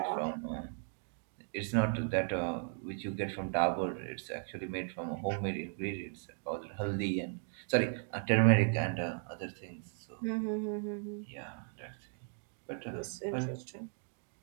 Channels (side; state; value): left; silent; 53 dB below the other